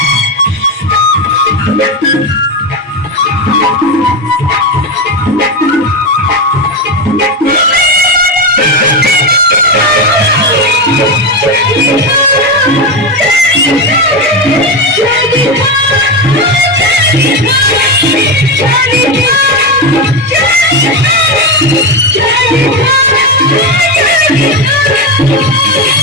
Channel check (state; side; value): normal; both; correlation 0.14